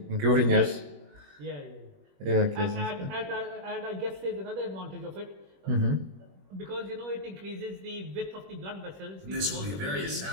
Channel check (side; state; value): left; late; 21 ms